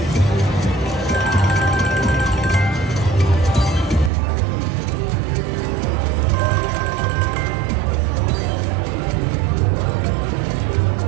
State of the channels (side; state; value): left; drops out; at 4.1 s